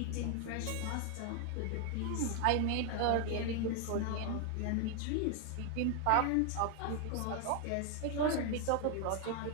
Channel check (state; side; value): different; both; correlation 0.00